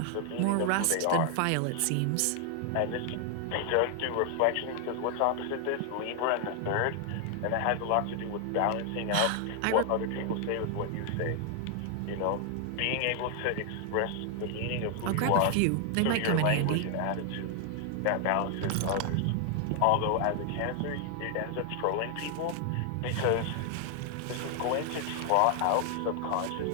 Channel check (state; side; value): different; both; correlation 0.00